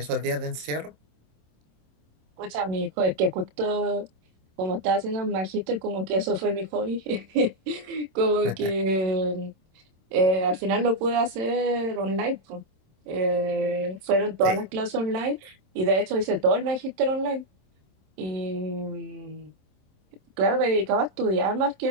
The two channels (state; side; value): late; left; 26 ms